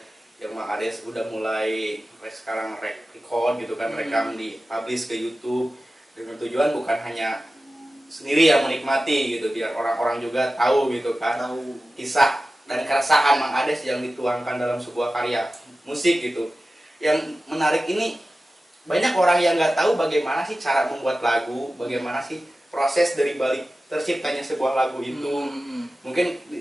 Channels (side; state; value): both; normal; correlation 0.95